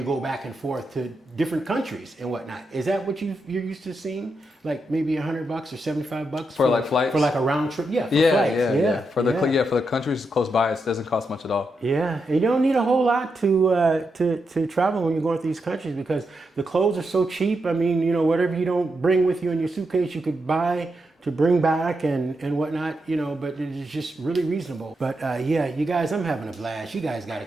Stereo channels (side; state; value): both; normal; correlation 0.84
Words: go back and forth to different countries and whatnot. Is that what you're used to seeing? Like maybe $100 or $75 for like flights? For like a round trip? Yeah, for flights. For the countries close by, it doesn't cost much at all. Yeah, and you don't need a whole lot to travel when you're going to these countries, because the clothes are so cheap. I mean, whatever you don't bring with you in your suitcase, you could buy to bring back and whatnot, but it's just really reasonable. But you guys, I'm having a blast. You guys got to